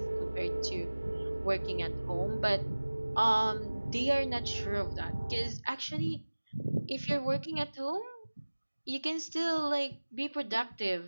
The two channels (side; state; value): both; inverted; correlation -1.00